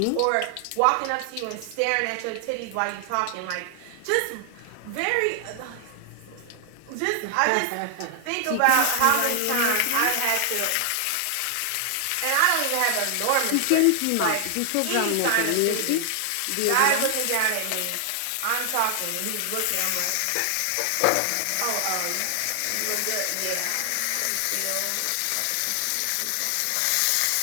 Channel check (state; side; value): different; both; correlation 0.00